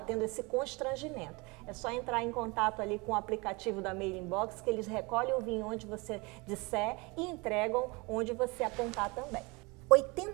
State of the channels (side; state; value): left; quieter; 26.7 dB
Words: esse constrangimento. É só entrar em contato ali com o aplicativo da Mailing Box, que eles recolhem o vinho onde você disser e entregam onde você apontar também.